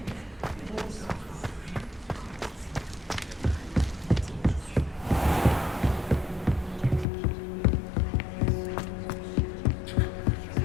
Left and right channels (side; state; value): right; drops out; at 7.1 s